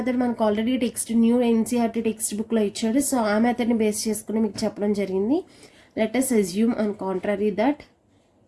మనకు already text new NCERT text బుక్లో ఇచ్చాడు. సో ఆ మెథడ్ని బేస్ చేసుకుని మీకు చెప్పడం జరిగింది. Let us assume on contrary that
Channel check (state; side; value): identical; both; correlation 1.00